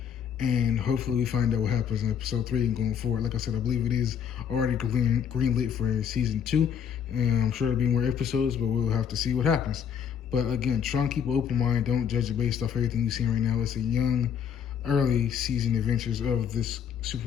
and hopefully we find out what happens in episode 3 and going forward. Like I said, I believe it is already greenlit for season 2, and I'm sure there'll be more episodes, but we'll have to see what happens. But again, try and keep an open mind. Don't judge it based off everything you've seen right now. It's a young, early season adventures of this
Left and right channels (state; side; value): quieter; right; 8.1 dB